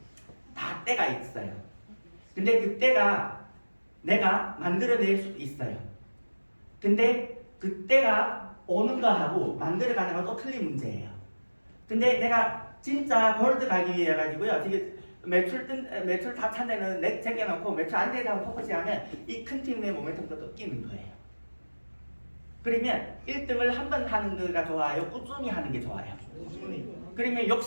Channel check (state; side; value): inverted; both; correlation -1.00